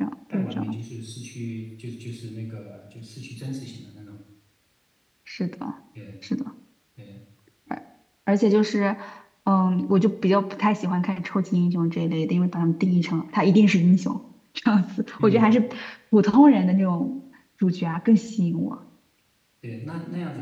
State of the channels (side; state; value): both; identical; correlation 1.00